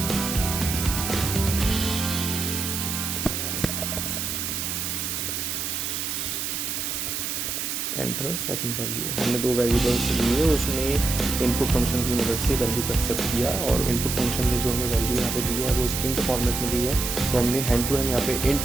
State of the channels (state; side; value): noise; right; hiss, 2 dB below the sound